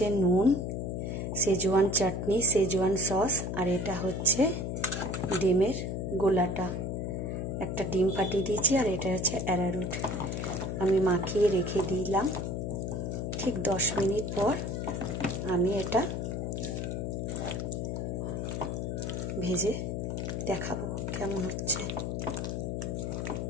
নুন, সেজওয়ান চাটনি, সেজওয়ান সস, আর এটা হচ্ছে ডিমের গোলাটা। একটা ডিম ফাটিয়ে দিয়েছি, আর এটা হচ্ছে অ্যারারুট। আমি মাখিয়ে রেখে দিলাম। ঠিক 10 মিনিট পর আমি এটা ভেজে দেখাবো কেমন হচ্ছে।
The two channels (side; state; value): left; noise; hum, 2 dB below the sound